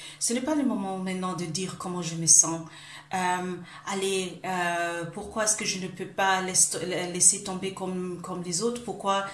Ce n'est pas le moment maintenant de dire comment je me sens. Allez, pourquoi est-ce que je ne peux pas laisser tomber comme les autres? Pourquoi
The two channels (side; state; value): both; identical; correlation 1.00